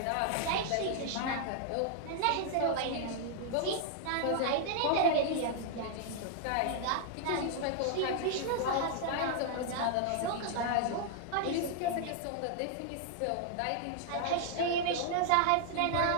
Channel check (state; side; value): different; both; correlation -0.01